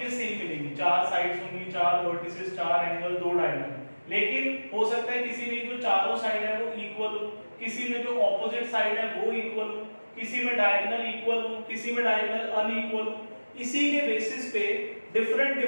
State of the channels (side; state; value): both; inverted; correlation -1.00